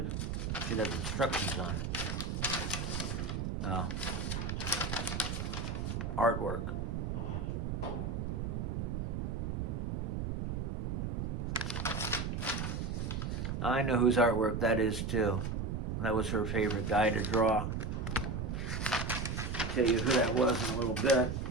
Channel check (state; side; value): noise; right; rumble, 2 dB below the sound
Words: Should have instructions on it. Oh. Artwork. I know whose artwork that is too. That was her favorite guy to draw. I'll tell you who that was in a little bit.